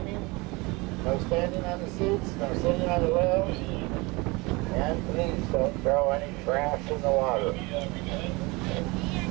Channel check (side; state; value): left; quieter; 25.0 dB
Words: no standing on the seats, no sitting on the rails, and please don't throw any trash in the water.